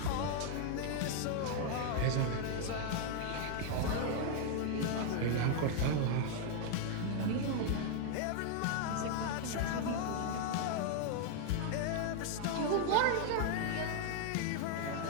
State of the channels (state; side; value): different; both; correlation 0.00